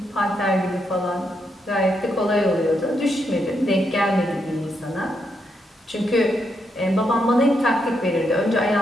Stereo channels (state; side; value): normal; both; correlation 0.80